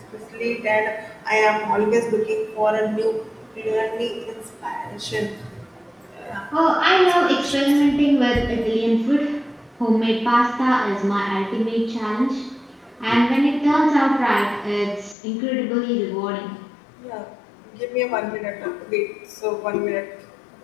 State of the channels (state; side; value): drops out; right; at 15.2 s